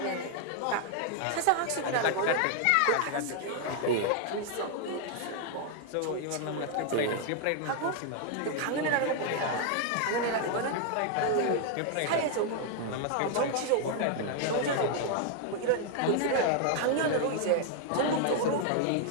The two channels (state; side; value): different; both; correlation 0.00